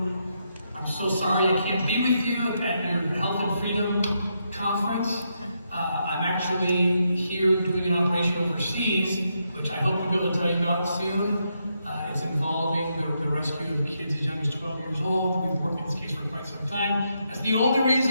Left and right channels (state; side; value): inverted; both; correlation -0.80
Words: I'm so sorry I can't be with you at your Health and Freedom conference. I'm actually here doing an operation overseas, which I hope we'll be able to tell you about soon. It's involving the rescue of kids as young as 12 years old. We've worked on this case for quite some time. That's the only